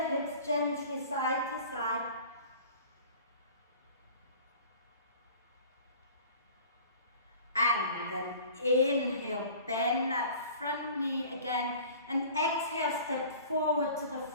hips gently side to side. And then inhale, bend that front knee again. And exhale, step forward to the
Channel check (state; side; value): inverted; both; correlation -0.44